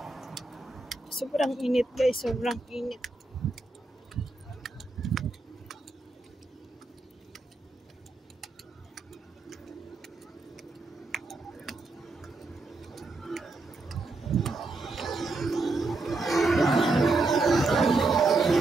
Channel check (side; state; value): left; quieter; 3.3 dB